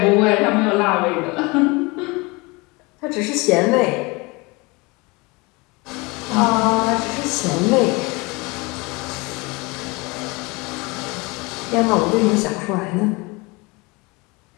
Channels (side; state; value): right; quieter; 26.0 dB